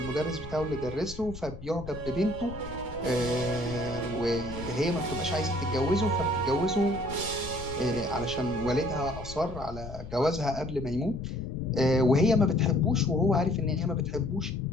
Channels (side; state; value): left; noise; rumble, 12 dB below the sound